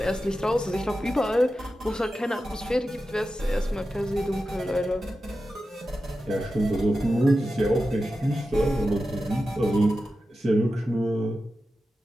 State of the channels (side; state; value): both; normal; correlation 0.92